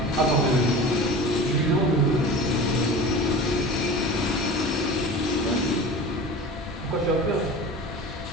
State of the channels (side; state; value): both; normal; correlation 0.35